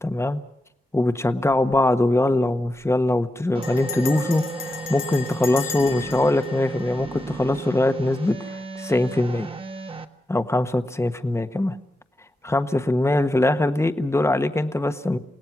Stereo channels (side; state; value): both; normal; correlation 0.89